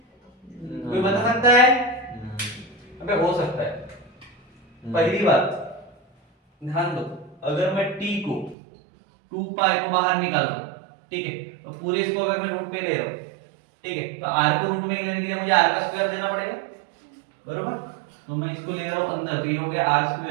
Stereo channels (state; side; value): drops out; left; at 8.6 s